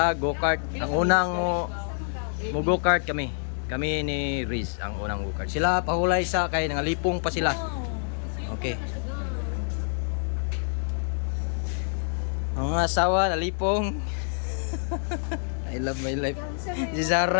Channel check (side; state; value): right; silent; digital silence